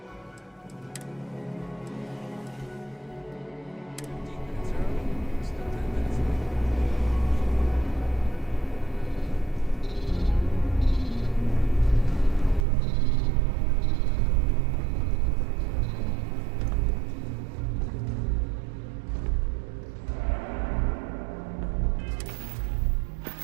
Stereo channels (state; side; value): drops out; left; at 12.7 s